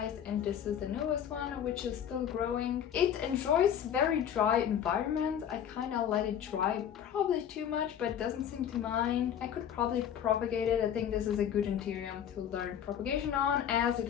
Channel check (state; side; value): quieter; right; 9.3 dB